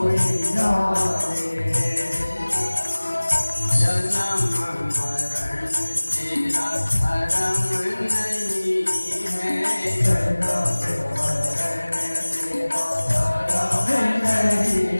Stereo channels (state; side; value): inverted; both; correlation -1.00